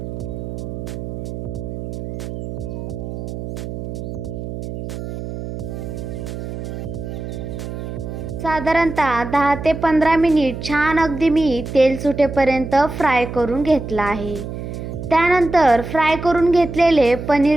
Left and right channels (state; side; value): noise; right; hum, 7 dB below the sound